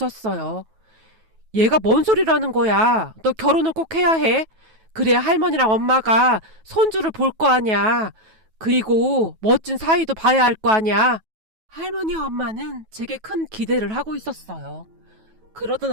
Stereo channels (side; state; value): left; late; 9.2 ms